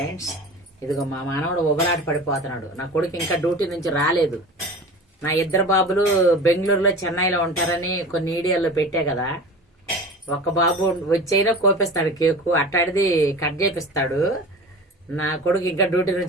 ఇదిగో మా మానవుడు ఉబలాట పడిపోతున్నాడు. నా కొడుకు ఇంకా డ్యూటీ నుంచి రాలేదు. నా ఇద్దరు బాబులు బెంగళూరులో చెన్నైలో ఉంటారని కొన్ని వీడియోల్లో పెట్టా కదా. ఒక్క బాబు వచ్చైనా కోపిస్తాడు కేకు, అట్టాడిది కట్ చేపిస్తాడు. నా కొడుకు ఇంకా డ్యూటీ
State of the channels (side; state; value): both; normal; correlation 0.35